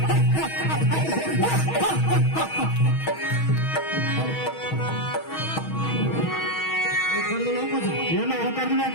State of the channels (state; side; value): late; right; 6.3 ms